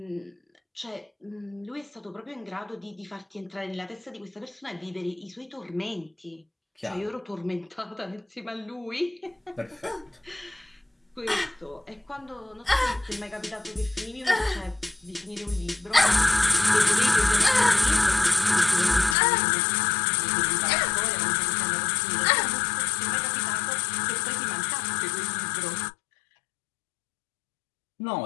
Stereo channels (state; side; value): drops out; right; at 19.2 s